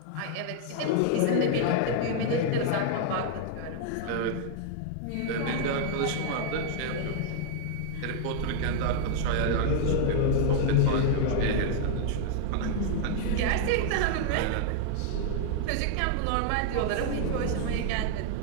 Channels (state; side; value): different; both; correlation 0.00